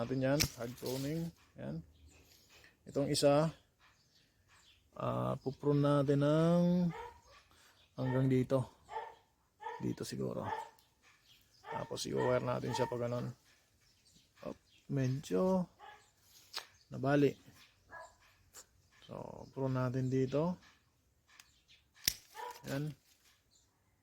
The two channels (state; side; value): identical; both; correlation 1.00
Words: yan, hard pruning. Yan. Itong isa, puprune natin ng hanggang dito. Dito siguro. Tapos i-wire natin siya pag ganon. Medyo nabali. So, prune natin dito. Yan.